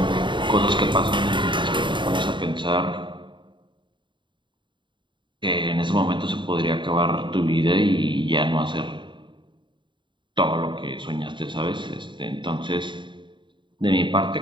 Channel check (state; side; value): late; left; 0.23 ms